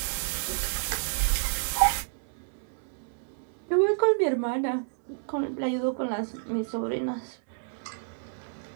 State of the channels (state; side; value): silent; left; digital silence